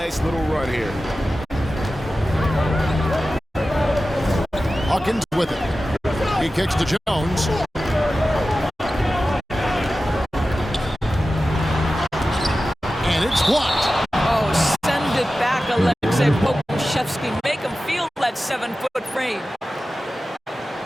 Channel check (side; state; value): both; normal; correlation 0.94